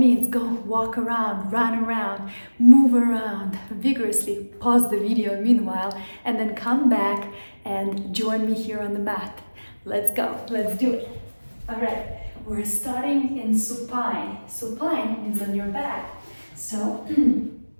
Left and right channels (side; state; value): both; inverted; correlation -1.00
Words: go walk around, run around, move around vigorously, pause the video meanwhile, and then come back and join me here on the mat. Let's go, let's do it. All right, we're starting in supine. Supine means on your back. So,